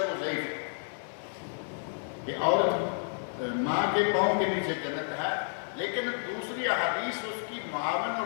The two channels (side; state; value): right; silent; digital silence